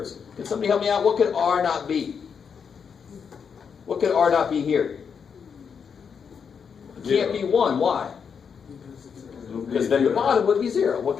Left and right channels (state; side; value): quieter; right; 6.6 dB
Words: Can somebody help me out? What could R not be? What could R not be here? It can't be 1. Why? Because then the bottom would be 0. What